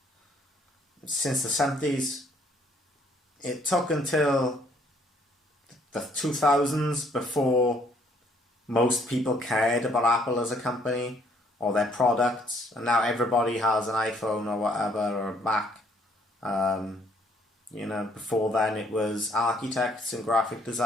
since the 70s. It took until the 2000s before most people cared about Apple as a company or their products, and now everybody has an iPhone or whatever, or a Mac. Before then it was architects and graphic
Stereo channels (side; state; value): both; normal; correlation 0.65